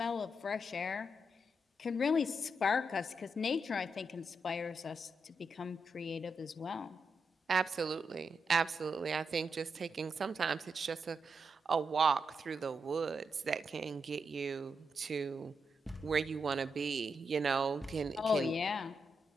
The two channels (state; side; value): normal; both; correlation 0.84